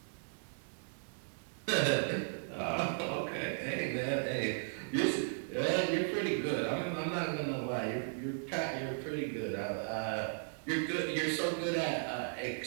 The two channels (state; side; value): silent; left; digital silence